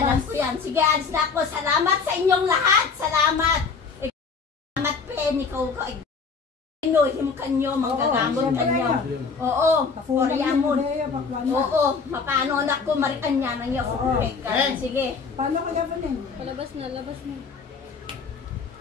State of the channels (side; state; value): right; quieter; 5.2 dB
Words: ko yan. Sige, alis na ako. Salamat sa inyong lahat. Salamat. Salamat, Pen. Ikaw ko. Inuhim kanyo, manggagamot kanyo. Oo, Koreamon. Oo, mapano anak ko, marikan niya nang iyo. Sige. Paano ka gabanin? Labas na.